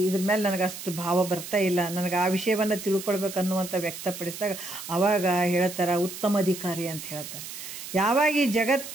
ಮೇಲೆ ನನಗೆ ಅಷ್ಟು ಭಾವ ಬರ್ತಾ ಇಲ್ಲ, ನನಗೆ ಆ ವಿಷಯವನ್ನು ತಿಳ್ಕೊಳ್ಬೇಕು ಅನ್ನುವಂಥ ವ್ಯಕ್ತಪಡಿಸಿದಾಗ ಆವಾಗ ಹೇಳ್ತಾರೆ ಉತ್ತಮ ಅಧಿಕಾರಿ ಅಂತ ಹೇಳ್ತಾರೆ. ಯಾವಾಗ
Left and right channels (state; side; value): noise; right; hiss, 10 dB below the sound